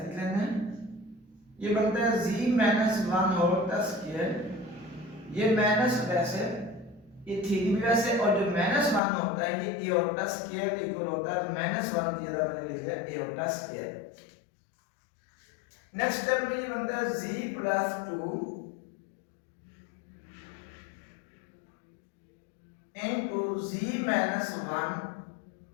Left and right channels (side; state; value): right; drops out; at 9.0 s